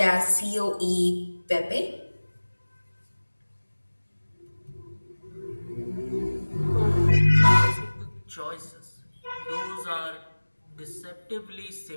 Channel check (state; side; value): inverted; both; correlation -1.00